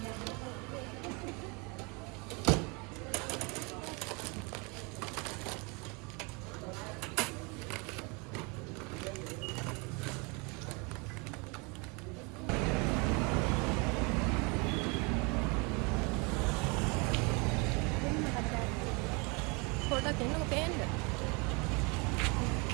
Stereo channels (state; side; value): quieter; left; 30.3 dB